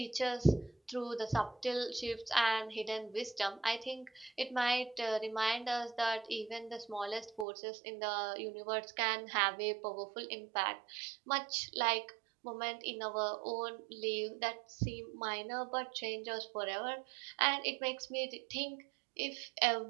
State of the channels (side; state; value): left; drops out; at 7.5 s